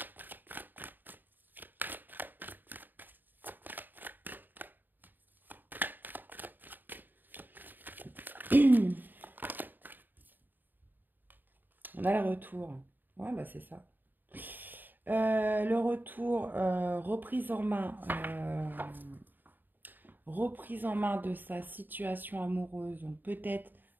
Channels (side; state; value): left; late; 0.091 ms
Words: On a le retour. Ouais, bah c'est ça. Le retour, reprise en main de sa situation amoureuse. Donc peut-être